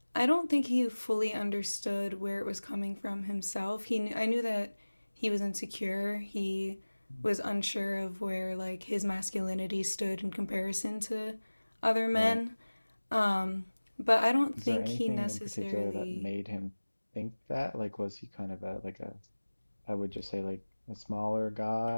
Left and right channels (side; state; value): both; inverted; correlation -1.00